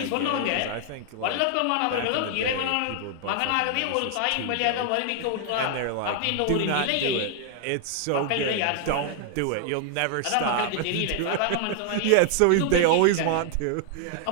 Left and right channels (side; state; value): both; different; correlation 0.00